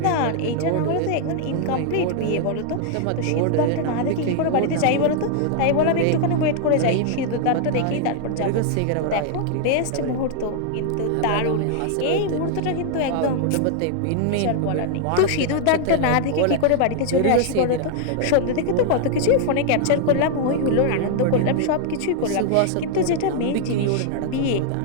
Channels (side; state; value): both; different; correlation 0.00